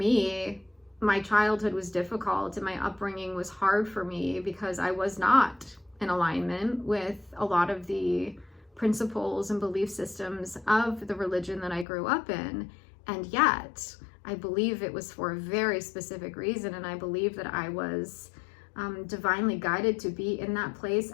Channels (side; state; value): right; drops out; at 11.9 s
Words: my childhood was difficult and my upbringing was hard for me because I was not in alignment with a lot of the principles and belief systems of the religion that I grew up in. And yet, I believe it was for a very specific reason. And I believe that I was divinely guided to be in that place